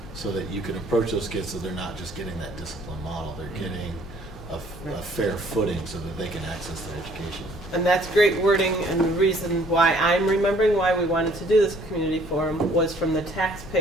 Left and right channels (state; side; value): normal; both; correlation 0.59